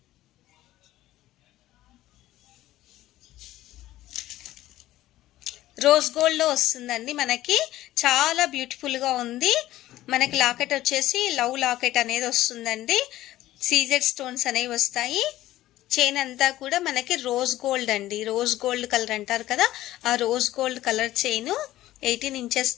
రోజ్ గోల్డ్లో వస్తుందండి మనకి. చాలా బ్యూటిఫుల్గా ఉంది. మనకి లాకెట్ వచ్చేసి లవ్ లాకెట్ అనేది వస్తుందండి. సీజెడ్ స్టోన్స్ అనేవి వస్తాయి. చైన్ అంతా కూడా మనకి రోజ్ గోల్డ్ అండి. రోజ్ గోల్డ్ కలర్ అంటారు కదా, ఆ rose gold colour chain 18 inches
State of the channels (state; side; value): quieter; right; 15.1 dB